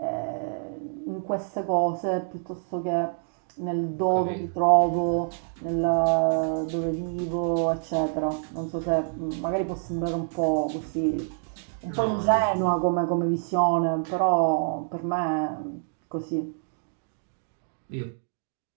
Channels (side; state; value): left; silent; digital silence